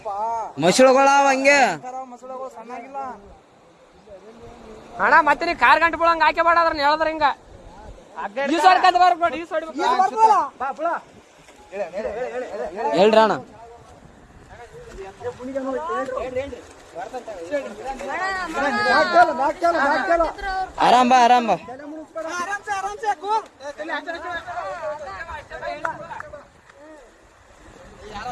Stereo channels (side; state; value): both; identical; correlation 1.00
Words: ಮಸಳುಗಳಾವ ಹಂಗೆ ಅಣ್ಣ. ಮತ್ತೆ ನೀ ಕಾರ್ ಗಂಟೆ ಬಿಡಂಗ ಹಾಕಿ ಬಾಡ್ರ ಹೇಳಿದ್ರ ಹಿಂಗ ಹೇಳ್ರಿ ಅಣ್ಣ. ಆರಾಮ್ ಬಾ ಆರಾಮ್ ಬಾ.